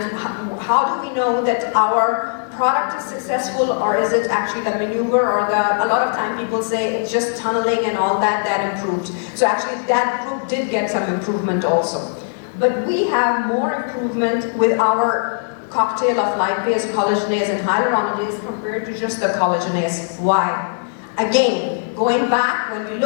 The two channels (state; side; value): silent; right; digital silence